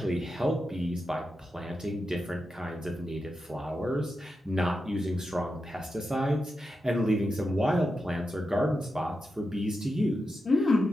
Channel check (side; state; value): both; normal; correlation 0.89